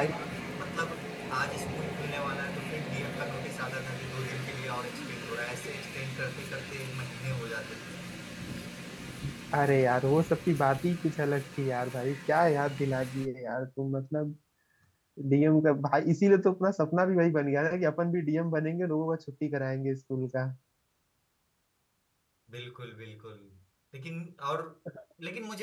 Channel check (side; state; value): both; identical; correlation 1.00